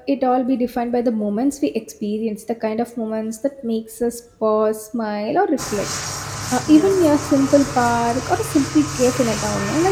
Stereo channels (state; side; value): identical; both; correlation 1.00